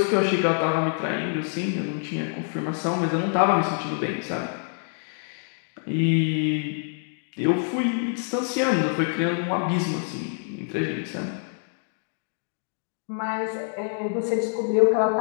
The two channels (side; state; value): right; silent; 61 dB below the other